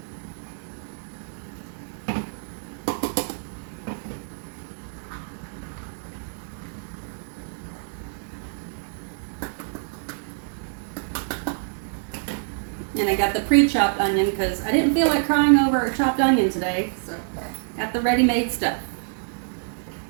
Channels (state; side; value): silent; left; 59 dB below the other